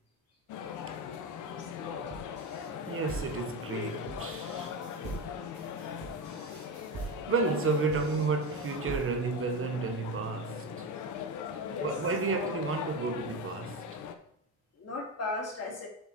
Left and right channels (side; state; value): both; normal; correlation 0.18